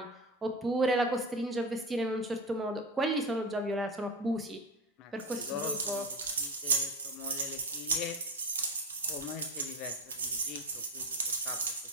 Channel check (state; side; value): normal; both; correlation 0.22